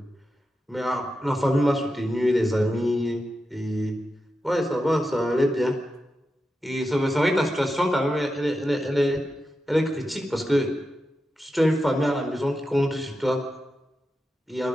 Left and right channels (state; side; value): normal; both; correlation 0.89